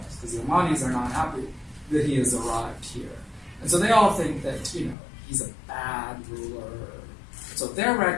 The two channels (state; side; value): drops out; right; at 5.0 s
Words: because the Omanis are not happy that he has arrived here. And so they all think that, he's a bad ruler. So their